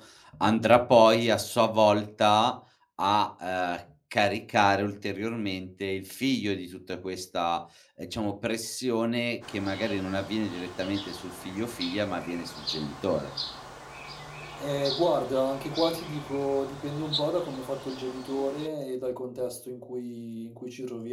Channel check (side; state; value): both; identical; correlation 1.00